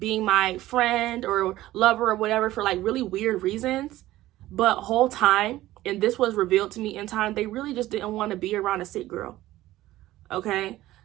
my friend or lover or whatever for like really weird reasons. But whole time, and this was revealed to me in time, they really just didn't want to be around a sick girl. Okay?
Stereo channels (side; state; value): left; quieter; 15.8 dB